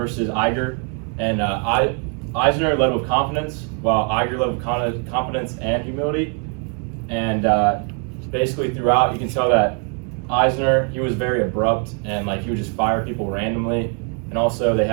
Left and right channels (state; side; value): quieter; left; 39.1 dB